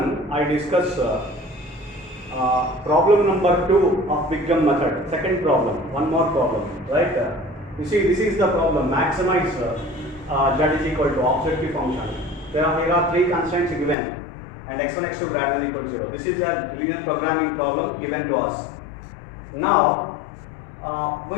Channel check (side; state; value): right; drops out; at 14.0 s